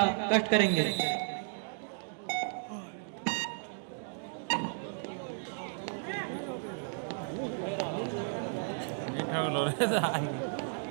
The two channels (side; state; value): left; silent; digital silence